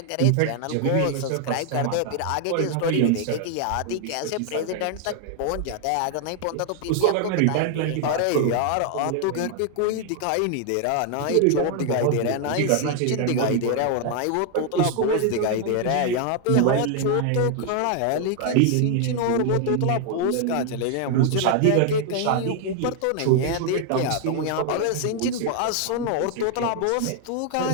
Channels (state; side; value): different; both; correlation 0.00